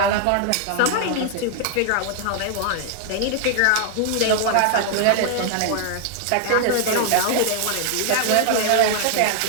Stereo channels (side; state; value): both; different; correlation 0.00